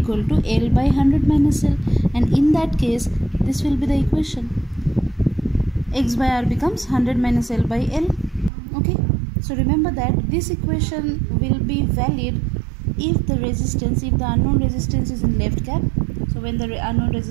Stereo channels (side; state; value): left; drops out; at 8.5 s